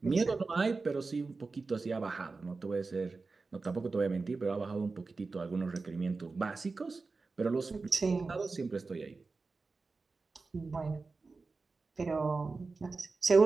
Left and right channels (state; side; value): quieter; left; 4.0 dB